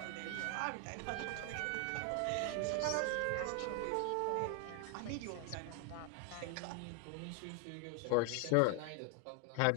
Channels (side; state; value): both; different; correlation 0.00